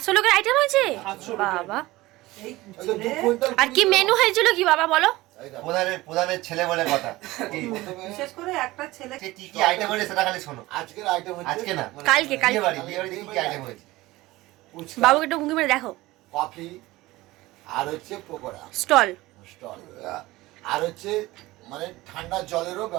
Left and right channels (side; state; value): left; quieter; 19.0 dB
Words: লোকের আইটেম হয়েছে 700 লোকের। বাবা। ওই তো 2 কুইন্টাল আর কি মেনু হয়েছিল কি বাবা বলো? প্রধানের ছেলে বলে কথা। বিশেষ করে একটা ছেলে সে কি কি আইটেম হয়েছে সেটা খালি শোনো। আজকের আইটেম হচ্ছে আজকে না কালকে বিয়ে বাড়িতে কি কি আইটেম হয়েছে? বাবুকে একটু ঘুঁকি মেরে দেখো। কফি আর হচ্ছে পকোড়া স্টল। স্টল, আর হচ্ছে মানে ঠান্ডা জলেরও